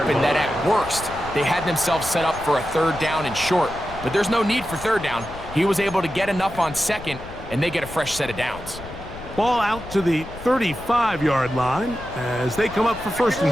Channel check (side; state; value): left; noise; rumble, 14 dB below the sound